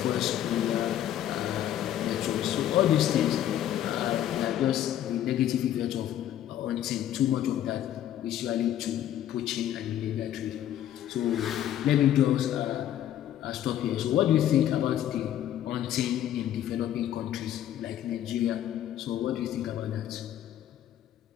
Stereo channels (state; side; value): quieter; right; 11.5 dB